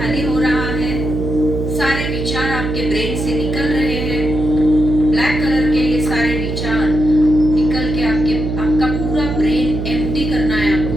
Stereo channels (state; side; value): noise; right; hum, 4 dB below the sound